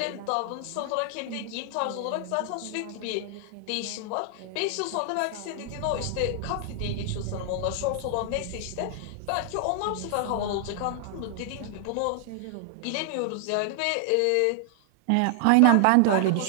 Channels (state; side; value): different; both; correlation 0.00